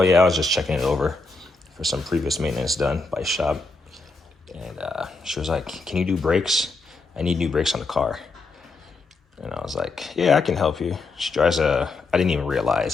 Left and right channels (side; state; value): right; quieter; 3.7 dB